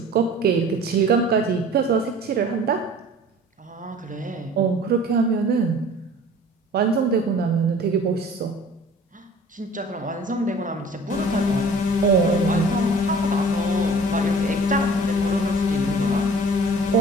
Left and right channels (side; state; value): both; normal; correlation 0.47